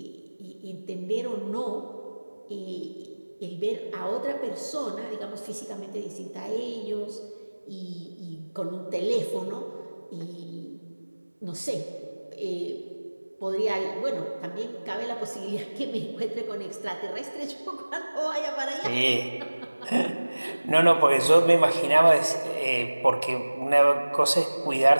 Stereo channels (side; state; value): both; inverted; correlation -1.00